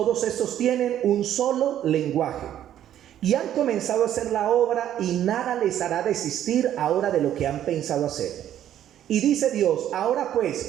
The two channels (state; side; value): quieter; left; 11.2 dB